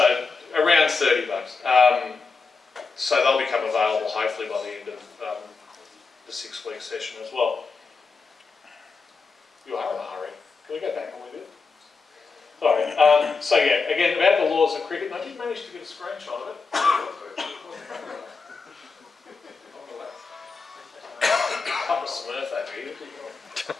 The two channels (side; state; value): right; quieter; 4.6 dB